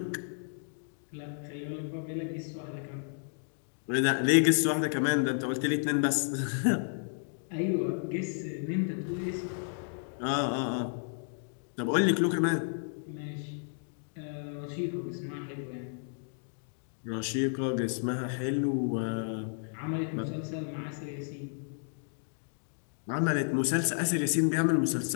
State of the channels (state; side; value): silent; right; digital silence